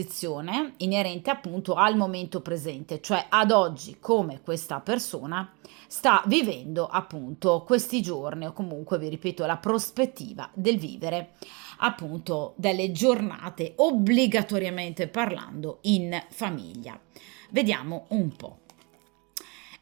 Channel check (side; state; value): left; quieter; 30.4 dB